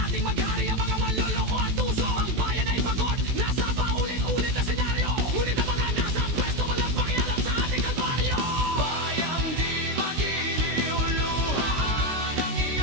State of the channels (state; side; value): late; left; 16 ms